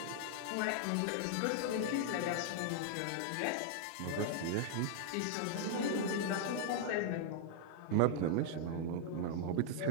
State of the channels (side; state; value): both; different; correlation -0.01